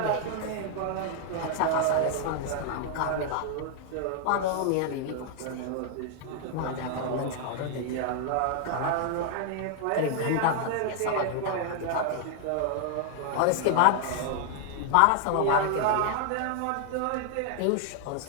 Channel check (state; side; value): different; both; correlation 0.00